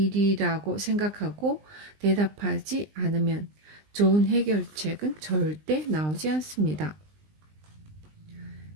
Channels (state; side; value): late; left; 20 ms